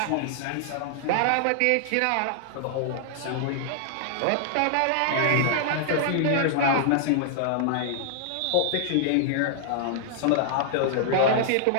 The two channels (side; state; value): both; different; correlation -0.01